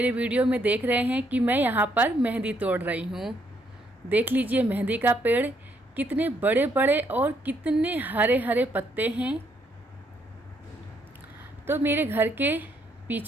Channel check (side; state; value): both; normal; correlation 0.72